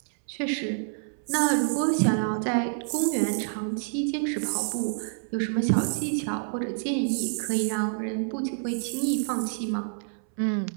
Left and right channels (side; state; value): left; silent; 60 dB below the other